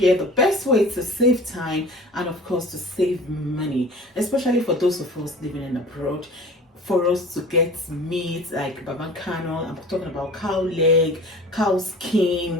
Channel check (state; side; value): normal; both; correlation 0.42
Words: the best way to save time and of course to save money, especially for those of us living in abroad. For us to get meat like babacano, I'm talking about cow leg, cow